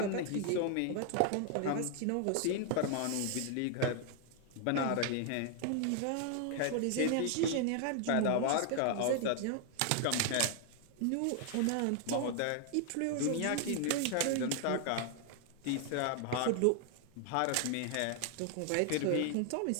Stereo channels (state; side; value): different; both; correlation 0.00